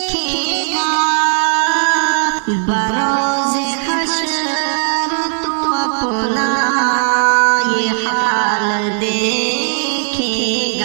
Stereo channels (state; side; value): silent; left; 57 dB below the other